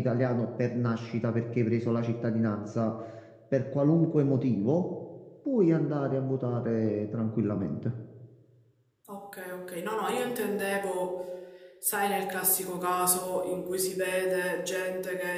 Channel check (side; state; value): both; identical; correlation 1.00